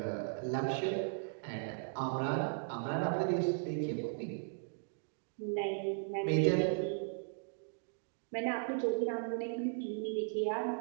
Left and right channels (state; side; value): silent; left; digital silence